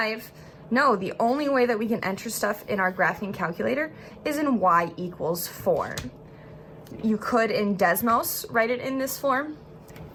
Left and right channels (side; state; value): both; identical; correlation 1.00